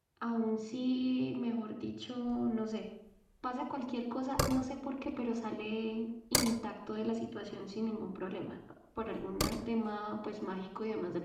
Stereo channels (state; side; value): identical; both; correlation 1.00